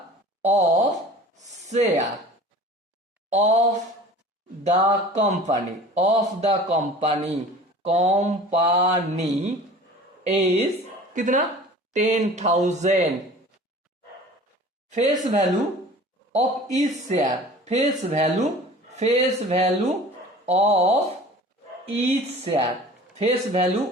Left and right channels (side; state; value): both; normal; correlation 0.43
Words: of share of the company, company is कितना? 10,000। Face value of each share, face value of each share, face value